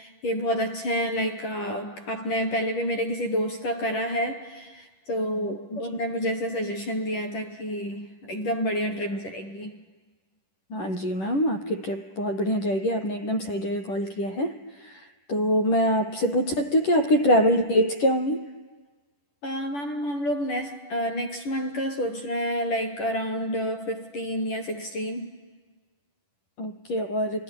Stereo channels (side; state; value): right; late; 10 ms